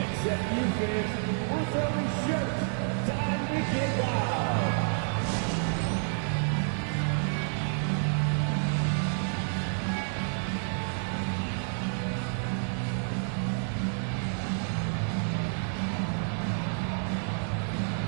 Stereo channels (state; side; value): silent; left; 57 dB below the other